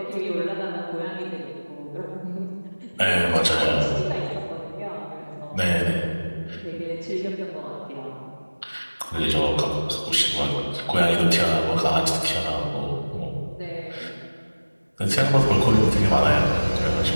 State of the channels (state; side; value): inverted; both; correlation -1.00